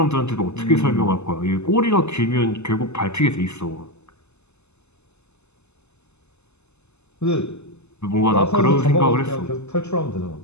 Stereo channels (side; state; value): right; late; 0.81 ms